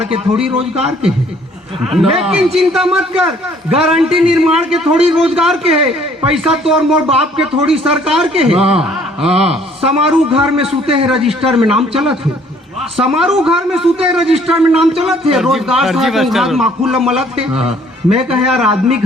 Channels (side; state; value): both; normal; correlation 0.60